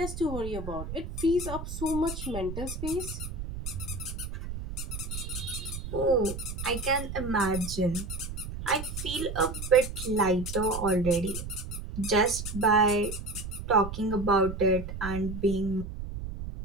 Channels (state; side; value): noise; right; rumble, 7 dB below the sound